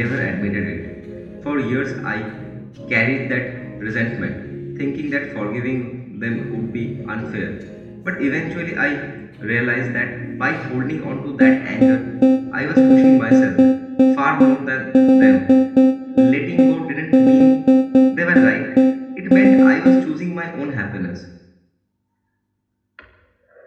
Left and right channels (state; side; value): identical; both; correlation 1.00